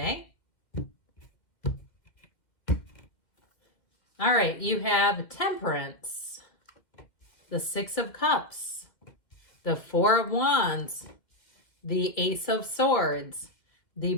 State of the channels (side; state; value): right; late; 2.1 ms